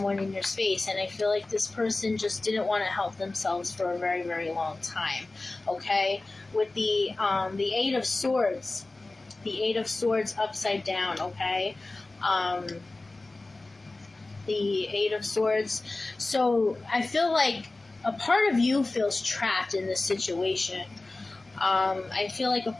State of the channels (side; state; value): right; quieter; 3.1 dB